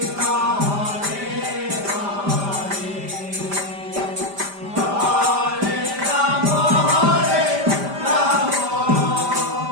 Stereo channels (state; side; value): late; left; 5.0 ms